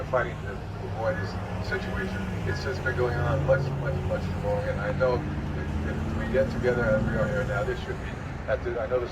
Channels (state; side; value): identical; both; correlation 1.00